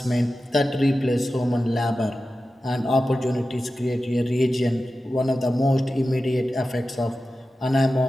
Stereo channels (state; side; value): normal; both; correlation 0.93